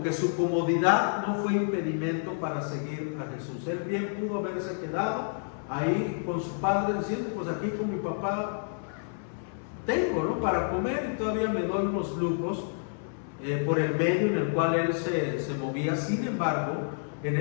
Que su comodidad no fue impedimento para seguir a Jesús. Él bien pudo haberse quedado ahí con su padre diciendo, pues aquí con mi papá tengo, ¿no?, para comer, y todavía me doy unos lujos por el medio en el cual él se movía. Sin embargo, en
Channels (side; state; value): right; silent; 58 dB below the other